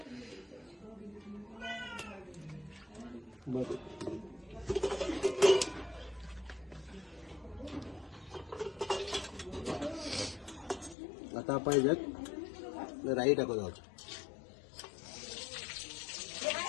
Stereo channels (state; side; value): drops out; right; at 11.0 s